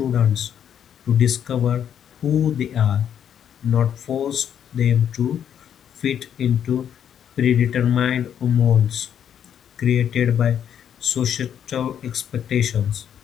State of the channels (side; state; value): right; quieter; 9.1 dB